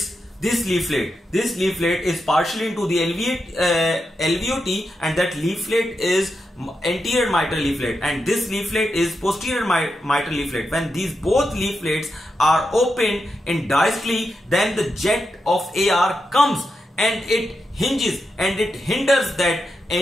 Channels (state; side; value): normal; both; correlation 0.87